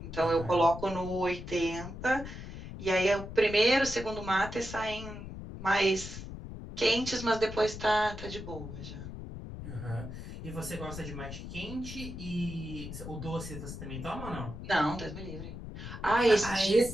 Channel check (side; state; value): left; noise; rumble, 10 dB below the sound